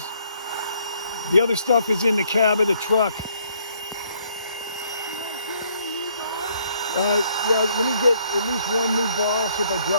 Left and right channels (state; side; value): inverted; both; correlation -0.67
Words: The other stuff is in the cab of the truck. Yeah, let me get at least 1 new ball, so if I